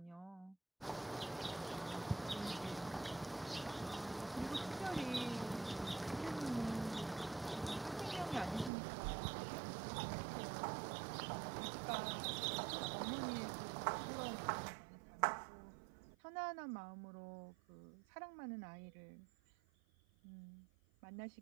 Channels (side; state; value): left; drops out; at 8.7 s